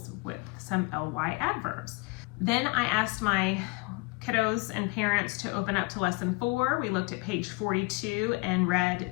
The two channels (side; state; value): right; quieter; 26.9 dB